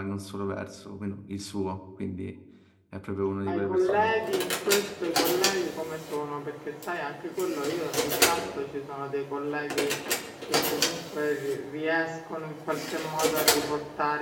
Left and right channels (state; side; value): identical; both; correlation 1.00